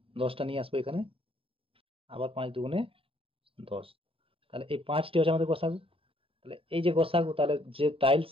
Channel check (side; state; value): left; late; 0.27 ms